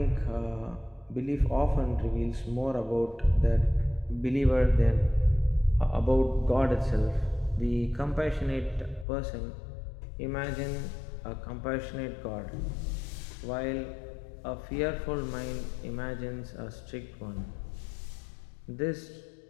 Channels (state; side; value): drops out; right; at 9.1 s